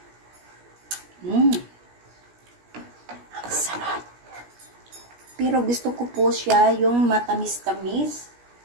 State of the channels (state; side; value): late; left; 17 ms